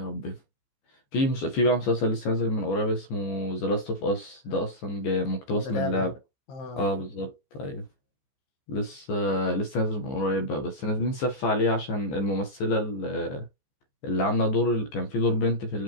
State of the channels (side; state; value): right; late; 14 ms